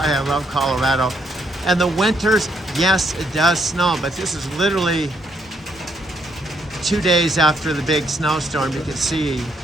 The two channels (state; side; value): normal; both; correlation 0.73